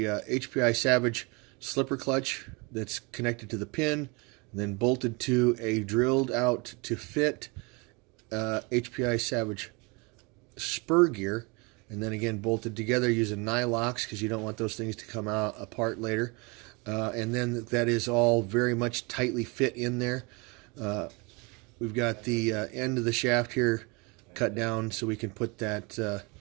HPI Savage slipper clutch that's connected to the pin, then bolted to a drilled out to fit HPI Savage spur gear, and then again bolted together using nylocks, because you don't want those things to come out apart later. And then that is all very much tightly fit in there. We've got the end of the shaft here cut down so we can put that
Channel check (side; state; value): left; quieter; 28.7 dB